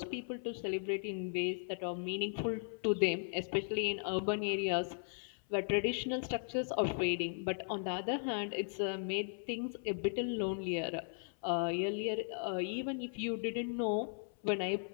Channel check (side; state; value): right; silent; 53 dB below the other